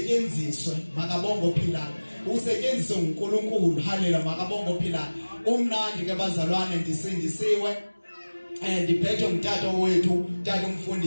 makabonga ophilayo usetyenziswe uNkulunkulu haleluya makabonga ophilayo umnandi ke bazalwane ndisindisiwe ndiphethwe ngutata wethu tata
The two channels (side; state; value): both; inverted; correlation -1.00